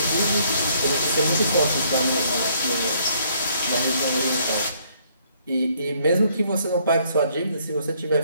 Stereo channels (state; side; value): inverted; both; correlation -0.67